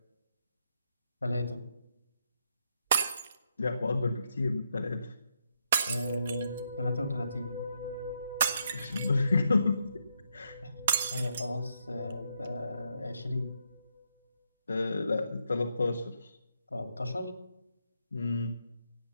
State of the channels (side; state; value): both; inverted; correlation -0.79